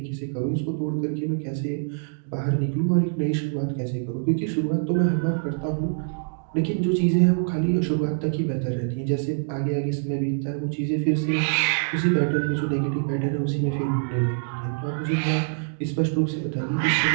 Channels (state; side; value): silent; left; digital silence